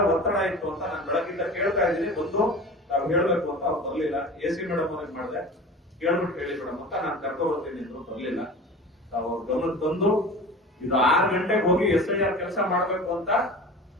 ಒತ್ತಡ ಇತ್ತು ಅಂತ ನಾನು ಬೆಳಗಿಂದ ಕೇಳ್ತಾ ಇದ್ದೀನಿ. ಬಂದು ನಾವು ಹೇಳ್ಬೇಕು ಅಂತ ಅವ್ರು ಬರ್ಲಿಲ್ಲ. AC ಮೇಡಮ್ ಅವ್ರಿಗೆ ಮಾಡಿದೆ, ಕೇಳ್ಬಿಟ್ಟು ಹೇಳಿ ಮೇಡಮ್ ಅಂತ ನಾನು ಕರ್ಕೊ ಬರ್ತೀನಿ ಅಂದ್ರು, ಬರ್ಲಿಲ್ಲ. ಅವ್ರ ಗಮನ ತಂದು ಇದು 6 ಗಂಟೆಗೆ ಹೋಗಿ SIR ಕೆಲಸ ಮಾಡ್ಬೇಕು ಅಂತ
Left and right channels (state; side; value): normal; both; correlation 0.37